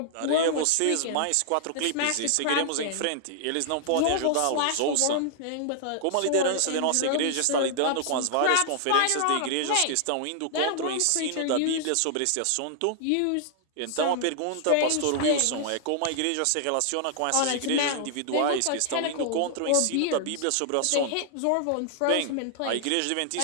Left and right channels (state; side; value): different; both; correlation -0.01